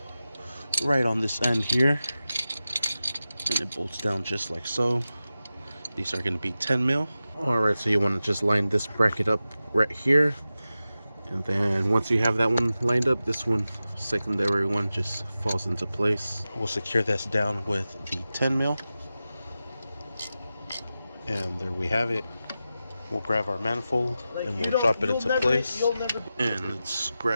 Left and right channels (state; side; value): inverted; both; correlation -0.93